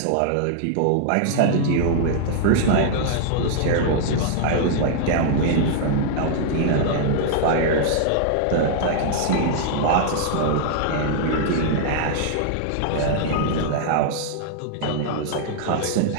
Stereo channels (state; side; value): different; both; correlation -0.01